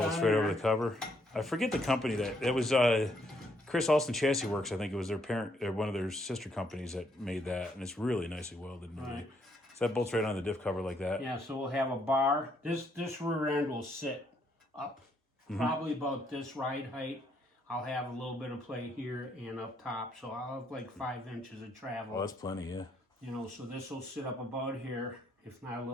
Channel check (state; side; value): normal; both; correlation 0.72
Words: on right there. over the cover. I forget the company that it was. Chris Alston Chassis Works, I think it was their parent, or one of their sister companies that made that, and it's really nicely welded. Right. So that bolts right on the diff cover like that. Yeah, so we'll have a bar. This rear end will sit up, probably about this ride height. I'll have a little bit of play here and up top, so I'll have like 5 inches of travel. Oh, that's plenty, yeah. You know, so this will sit up about here, if not a